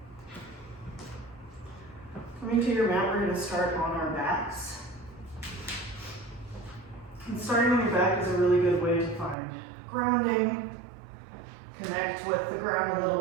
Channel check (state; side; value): drops out; left; at 9.3 s